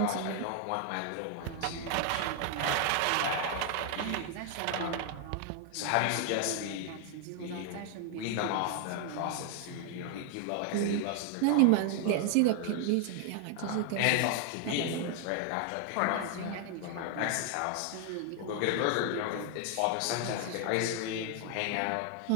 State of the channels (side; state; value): both; different; correlation 0.00